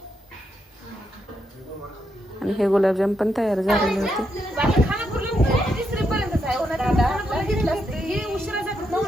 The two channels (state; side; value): normal; both; correlation 0.81